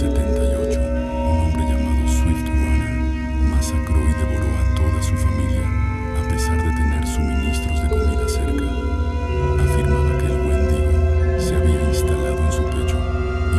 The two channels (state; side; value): identical; both; correlation 1.00